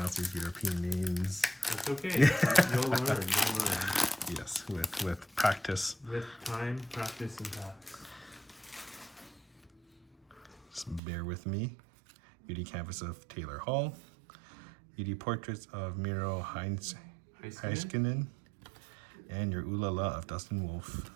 these European names. That's okay. You'll learn. You'll learn. Yes, with practice. With time, practice, and practice. Just bear with me. UD Canvas of Taylor Hall. UD Portraits of Miro Heiskanen. And your Ooh La La of Dustin Wolf.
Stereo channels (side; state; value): left; drops out; at 11.0 s